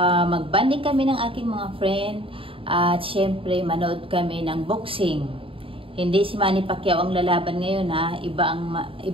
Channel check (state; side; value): late; left; 0.26 ms